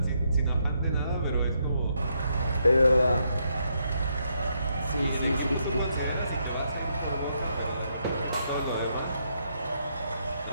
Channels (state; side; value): inverted; both; correlation -0.77